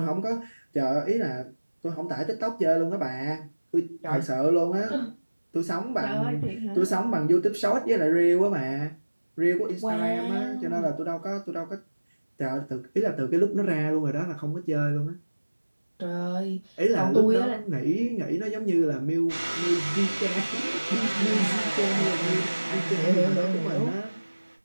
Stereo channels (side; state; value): both; inverted; correlation -1.00